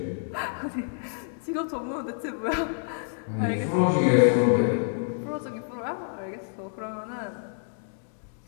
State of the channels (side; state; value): right; silent; digital silence